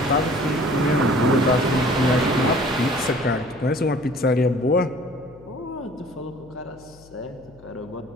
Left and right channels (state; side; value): noise; left; hum, 25 dB below the sound